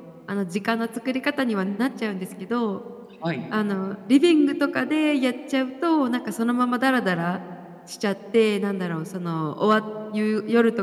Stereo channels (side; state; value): both; identical; correlation 1.00